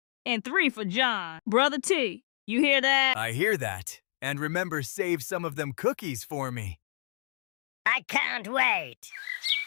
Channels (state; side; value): silent; right; 58 dB below the other